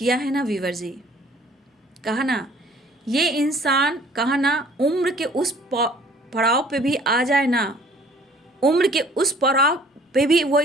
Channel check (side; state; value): both; normal; correlation 0.55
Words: है ना वीवर जी, कहा ना, ये इंसान, कहा ना, उम्र के उस पड़ाव पे भी आ जाए ना, उम्र के उस पड़ाव पे भी वो